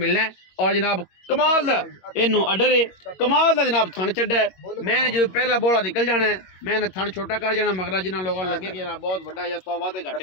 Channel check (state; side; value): late; right; 21 ms